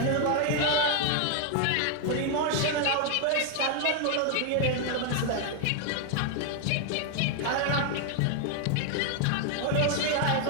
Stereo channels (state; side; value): different; both; correlation 0.00